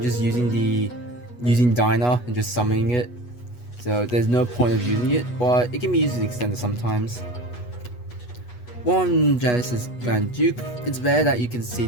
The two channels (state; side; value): late; right; 8.2 ms